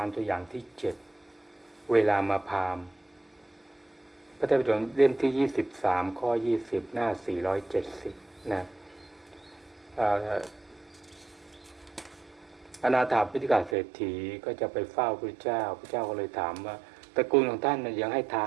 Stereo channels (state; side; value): drops out; left; at 13.8 s